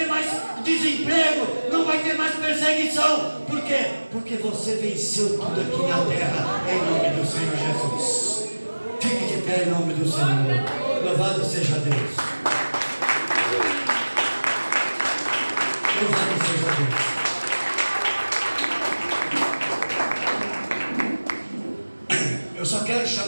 mais desemprego, não vai ter mais perseguição. Por quê? Porque você venceu tudo aqui na terra, em nome do Senhor Jesus. Fique de pé em nome do Senhor. Louvado seja Deus. Louvado seja Deus. Eu só quero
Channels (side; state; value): both; inverted; correlation -1.00